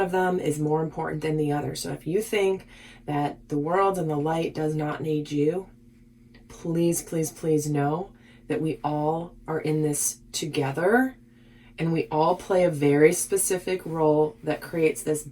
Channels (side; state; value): both; identical; correlation 1.00